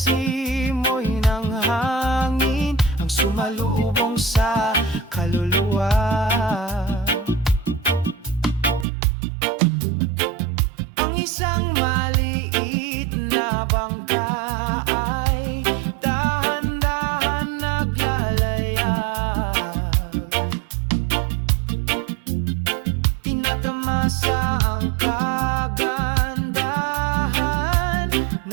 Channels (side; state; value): left; drops out; at 8.8 s